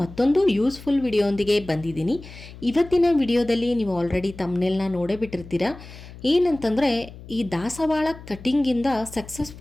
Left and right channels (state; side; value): noise; left; hum, 16 dB below the sound